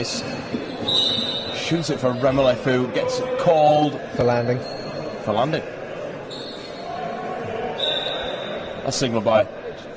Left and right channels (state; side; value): identical; both; correlation 1.00